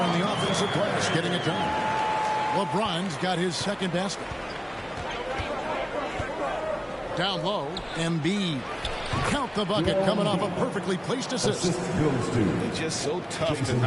on the offensive glass, getting it done. LeBron's got his second basket. Down low, Embiid. Count the bucket coming off a perfectly placed assist. It's just so tough to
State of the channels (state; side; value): identical; both; correlation 1.00